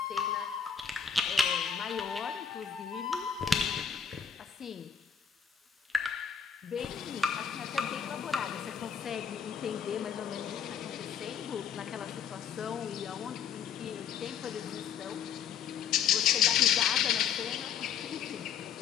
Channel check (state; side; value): quieter; right; 7.6 dB